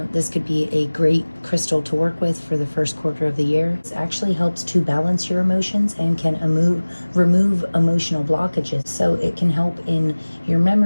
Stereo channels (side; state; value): both; inverted; correlation -1.00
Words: this could be a great crystal to work with for the first quarter of the year. It actually helps to balance your emotions and can remove emotional blockages. So it can help in your